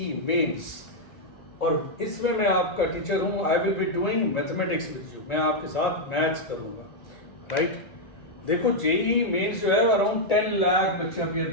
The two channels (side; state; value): right; late; 1.9 ms